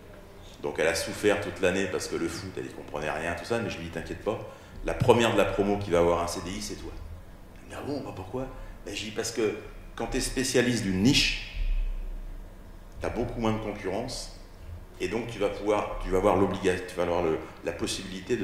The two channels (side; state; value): both; identical; correlation 1.00